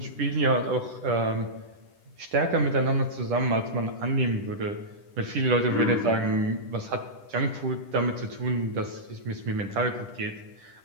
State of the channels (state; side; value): late; left; 10 ms